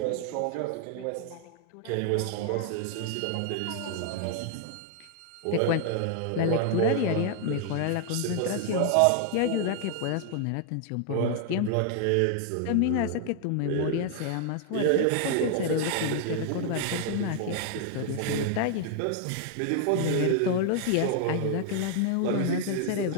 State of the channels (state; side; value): different; both; correlation 0.00